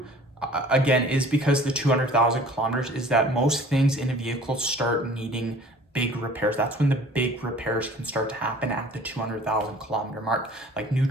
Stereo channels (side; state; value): both; normal; correlation 0.49